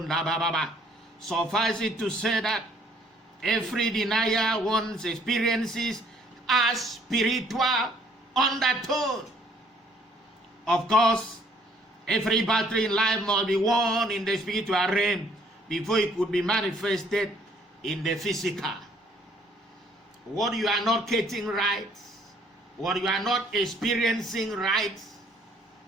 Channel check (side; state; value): both; normal; correlation 0.62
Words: bababa. Suffice it to say that every denier once experiences a spiritual undertone. Of course, every battle in life must be won in the spiritual realm before it could be manifested in the physical. What you are not getting right, what you are not experiencing right